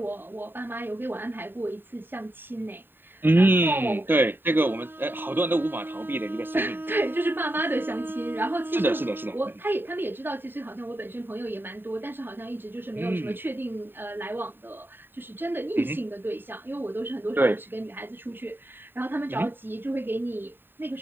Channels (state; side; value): late; left; 0.097 ms